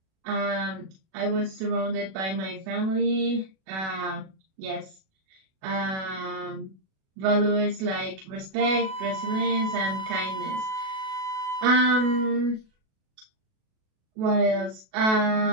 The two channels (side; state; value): left; late; 37 ms